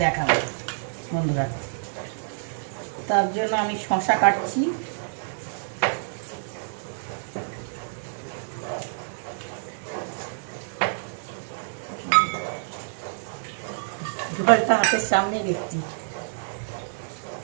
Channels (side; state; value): left; silent; digital silence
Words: দেখাবো বন্ধুরা। তার জন্য আমি শসা কাটছি। জলটা হাতের সামনে দেখছি।